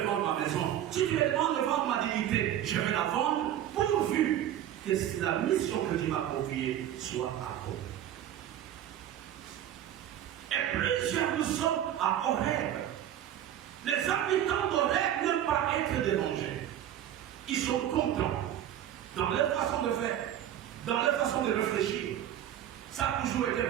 vendre ma maison. Si tu me demandes de vendre ma dignité, je vais la vendre, pourvu que la mission que tu m'as confiée soit accomplie. Et plusieurs nous sommes à Horeb. Les habitants d'Horeb n'aiment pas être dérangés. Ils sont contents dans leur façon de faire, dans leur façon de réfléchir. Ça a toujours été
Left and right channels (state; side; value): quieter; left; 11.2 dB